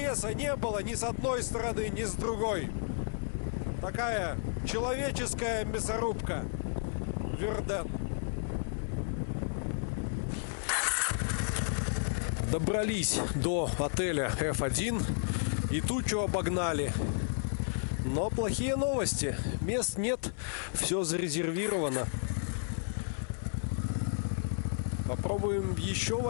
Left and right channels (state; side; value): silent; right; 56 dB below the other